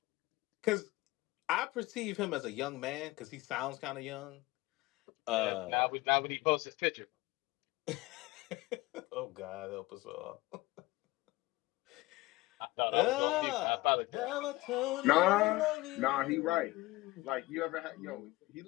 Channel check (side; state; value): right; quieter; 20.2 dB